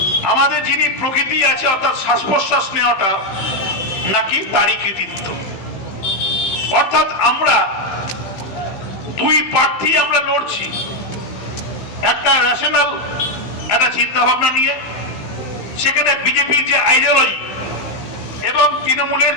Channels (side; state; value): right; late; 15 ms